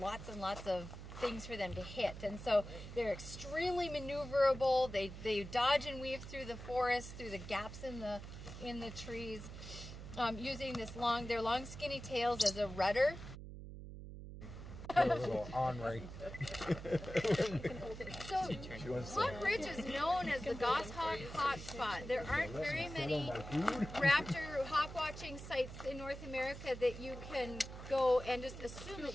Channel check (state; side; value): noise; right; hum, 11 dB below the sound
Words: lots and lots of things for them to hit. And so they're extremely maneuverable. They dodge and weave through the forest, through the gaps in the trees, using their long skinny tails as a rudder. So Hawk Ridge is known as the goshawk hotspot. There aren't very many raptor hawk watching sites in North America that you can go and just assume that